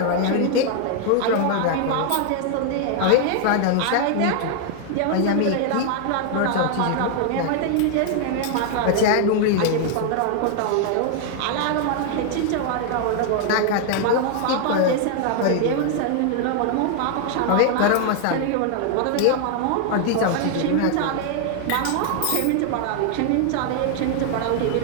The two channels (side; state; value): both; different; correlation 0.00